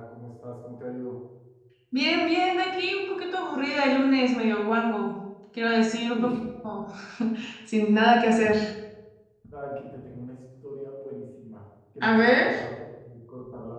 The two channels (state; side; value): identical; both; correlation 1.00